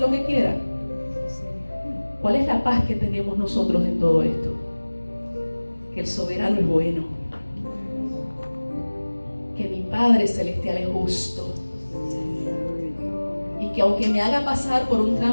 lo que quiera. ¿Cuál es la paz que tenemos nosotros en todo esto? Que el soberano es bueno, que mi Padre Celestial es justo, y que aunque me haga pasar por un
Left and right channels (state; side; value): inverted; both; correlation -1.00